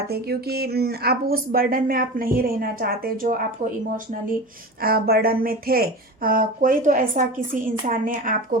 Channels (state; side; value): normal; both; correlation 0.30